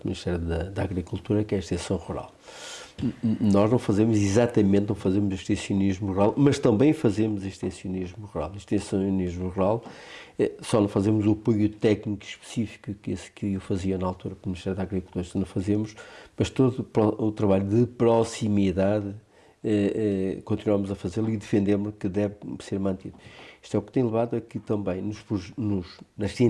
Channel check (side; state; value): both; identical; correlation 1.00